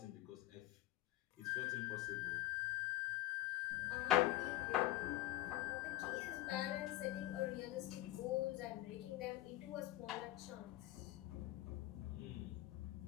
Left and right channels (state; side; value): quieter; right; 16.0 dB